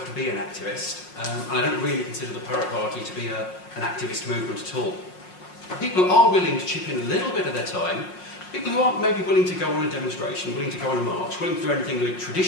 to be an activist, and I don't really consider the Pirate Party to be an activist movement at all. People are willing to chip in a little bit of their time. People who aren't maybe willing to go on a demonstration, willing to go on a march, willing to do anything we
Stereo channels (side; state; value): right; late; 5.5 ms